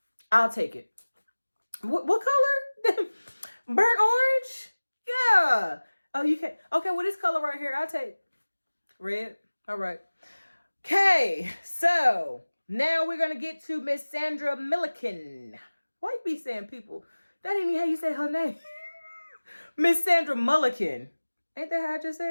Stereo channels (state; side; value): inverted; both; correlation -1.00